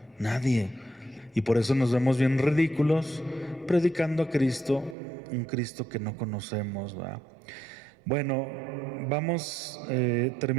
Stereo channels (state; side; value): drops out; left; at 5.0 s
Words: nadie. Y por eso nos vemos bien ridículos predicando a Cristo, un Cristo que no conocemos, ¿verdad? Bueno, vamos